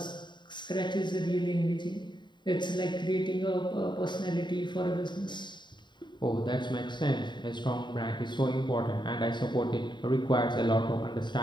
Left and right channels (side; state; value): right; late; 0.22 ms